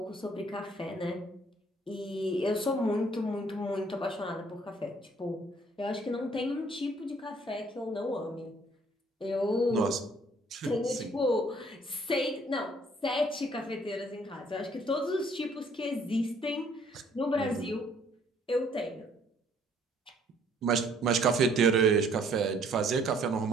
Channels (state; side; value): normal; both; correlation 0.61